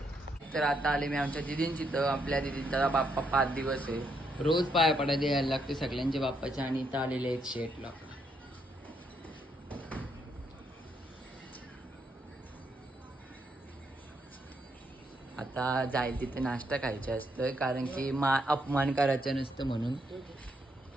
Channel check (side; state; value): both; normal; correlation 0.76